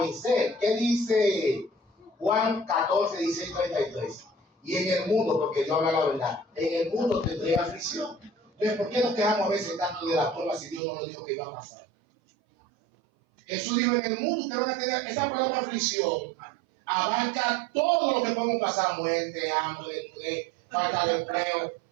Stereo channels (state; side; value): drops out; left; at 10.8 s